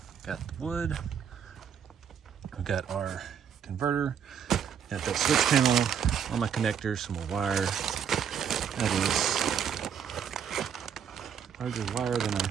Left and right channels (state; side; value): quieter; left; 8.0 dB